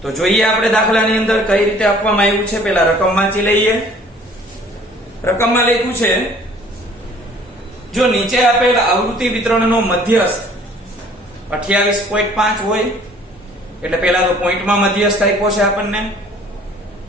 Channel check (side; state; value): both; normal; correlation 0.54